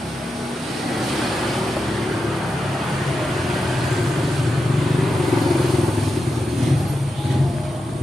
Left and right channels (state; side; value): normal; both; correlation 0.88